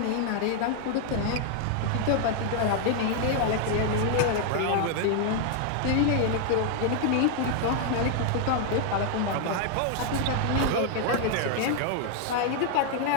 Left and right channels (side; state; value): both; different; correlation 0.00